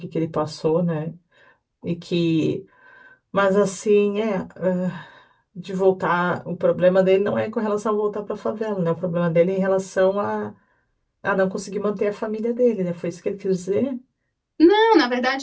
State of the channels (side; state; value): both; identical; correlation 1.00